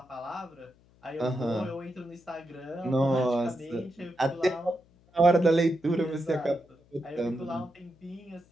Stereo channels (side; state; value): left; noise; hum, 30 dB below the sound